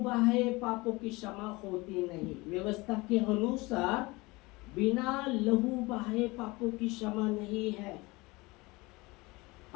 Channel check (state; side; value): quieter; right; 23.2 dB